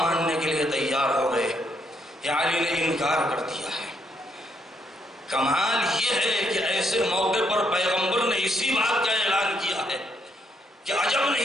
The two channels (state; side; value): normal; both; correlation 0.74